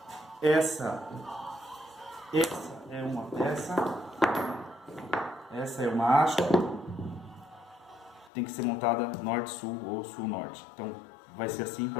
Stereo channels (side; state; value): right; drops out; at 8.3 s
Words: essa é uma peça, essa é uma haste, tem que ser montada norte-sul ou sul-norte. Então vai ser assim